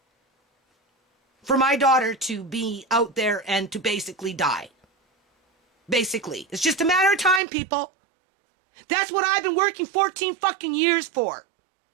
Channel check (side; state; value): left; drops out; at 7.4 s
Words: For my daughter to be out there and to basically die. Basically. It's just a matter of time, people. That's what I've been working 14 fucking years for.